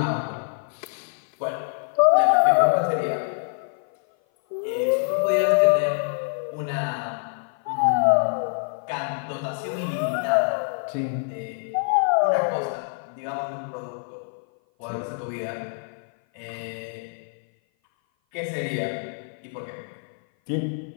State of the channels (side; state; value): right; silent; 56 dB below the other